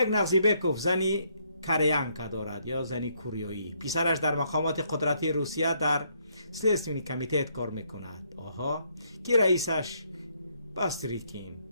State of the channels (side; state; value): both; inverted; correlation -0.71